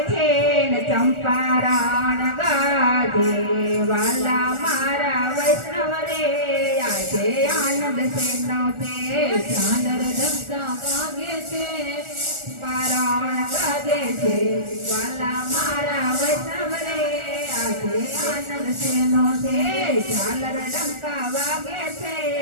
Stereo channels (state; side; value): late; left; 1.4 ms